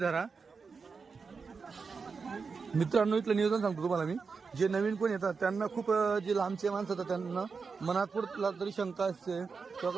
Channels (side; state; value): left; quieter; 5.0 dB